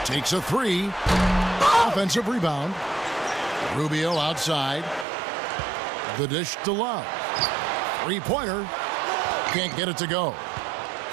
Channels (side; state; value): left; drops out; at 5.1 s